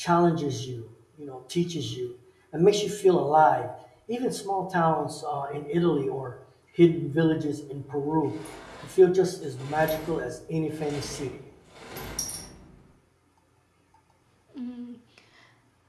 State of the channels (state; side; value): identical; both; correlation 1.00